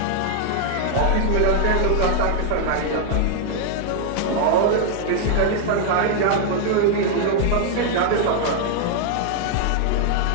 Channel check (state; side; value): different; both; correlation 0.00